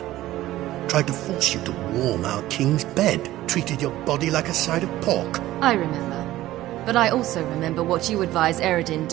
Tried to force you to warm our king's bed. Treated your body like a side of pork. I remember. But I also remember what you advised Eredin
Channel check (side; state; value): left; quieter; 15.5 dB